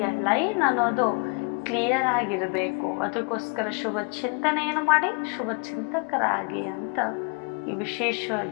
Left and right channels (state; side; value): quieter; right; 33.9 dB